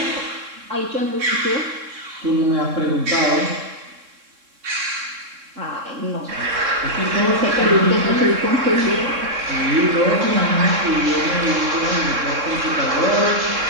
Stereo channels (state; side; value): late; left; 3.7 ms